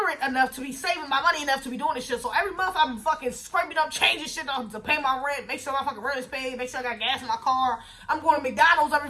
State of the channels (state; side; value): identical; both; correlation 1.00